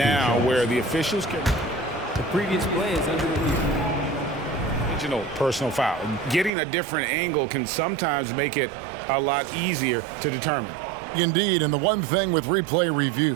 where the officials can... The previous play is under review. Personal foul. Getting a different angle can sometimes make it a lot easier to determine. Indeed, and the one thing with replay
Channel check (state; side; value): drops out; left; at 6.5 s